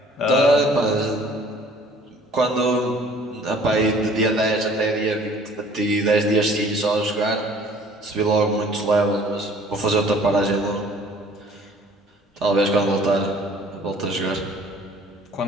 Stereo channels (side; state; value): both; normal; correlation 0.53